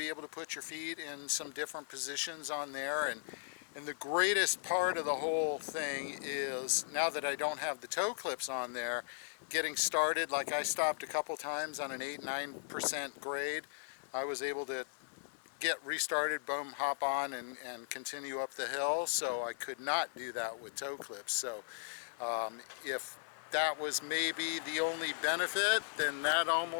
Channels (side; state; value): right; silent; digital silence